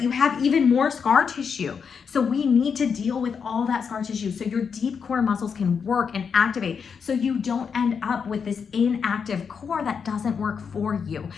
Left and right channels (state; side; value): quieter; right; 6.3 dB